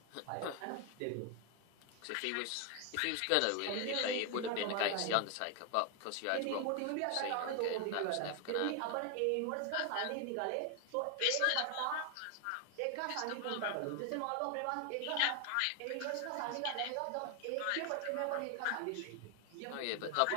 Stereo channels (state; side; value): different; both; correlation 0.01